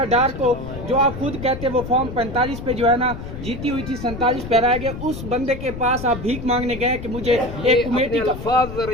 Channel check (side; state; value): left; noise; rumble, 9 dB below the sound